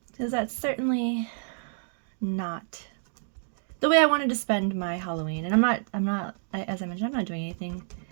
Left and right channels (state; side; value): silent; left; digital silence